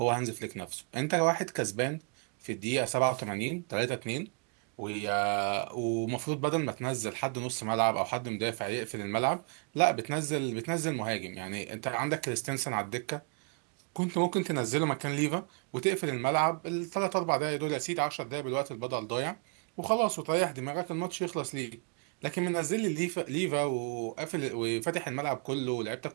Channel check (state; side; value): quieter; left; 38.0 dB